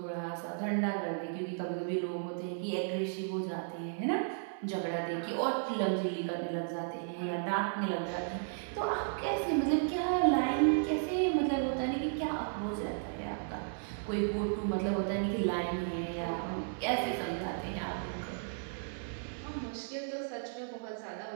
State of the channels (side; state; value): left; silent; 55 dB below the other